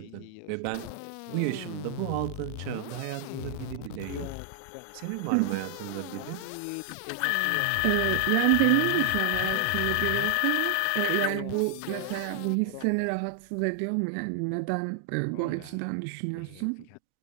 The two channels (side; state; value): both; different; correlation 0.00